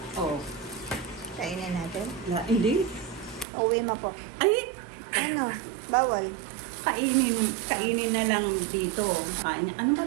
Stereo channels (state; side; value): drops out; left; at 3.5 s